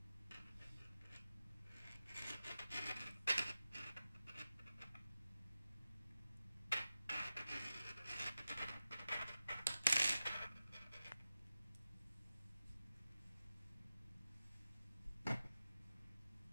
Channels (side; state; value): both; inverted; correlation -0.93